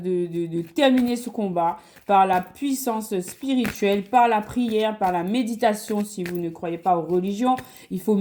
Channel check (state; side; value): identical; both; correlation 1.00